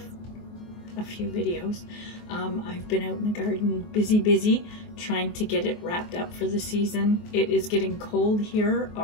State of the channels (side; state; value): right; late; 24 ms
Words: a few videos. I've been out in the garden busy trying to get it wrapped up for the season. It is getting cold here